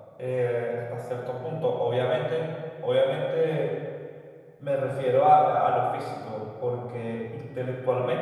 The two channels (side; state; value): both; identical; correlation 1.00